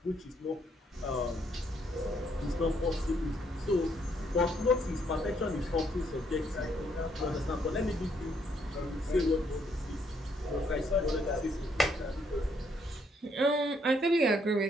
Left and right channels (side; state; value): both; normal; correlation 0.71